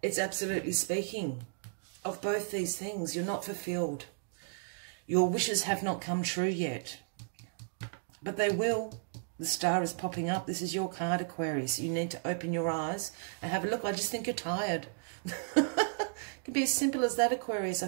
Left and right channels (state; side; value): silent; left; digital silence